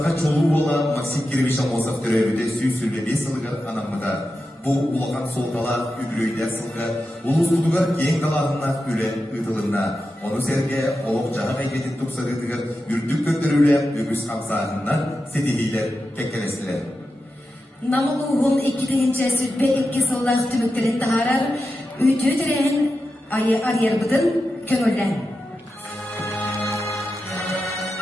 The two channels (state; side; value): normal; both; correlation 0.90